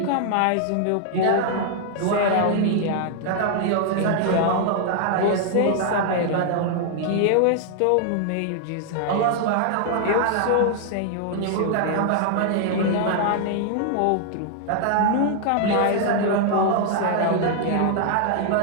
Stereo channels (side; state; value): both; different; correlation 0.00